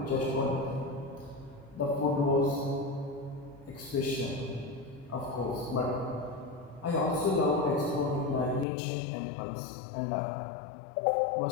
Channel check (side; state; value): right; drops out; at 8.7 s